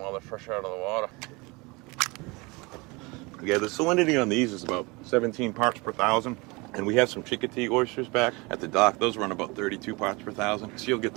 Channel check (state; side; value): quieter; left; 25.9 dB